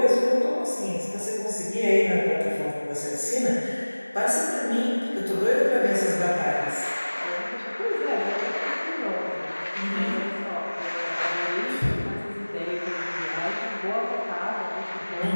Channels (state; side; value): inverted; both; correlation -1.00